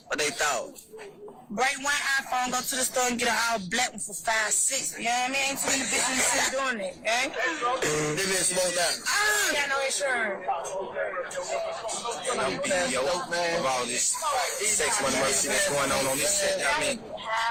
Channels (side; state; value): both; identical; correlation 1.00